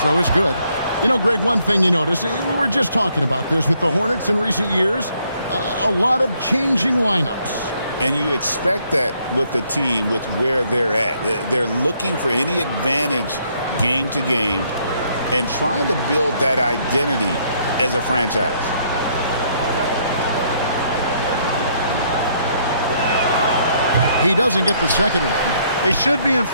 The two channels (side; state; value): both; inverted; correlation -0.69